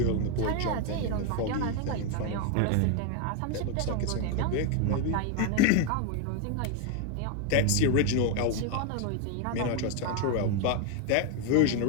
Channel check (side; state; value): both; different; correlation 0.01